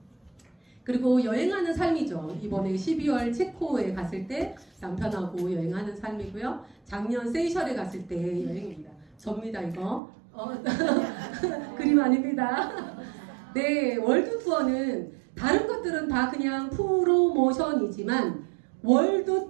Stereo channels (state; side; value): drops out; left; at 10.0 s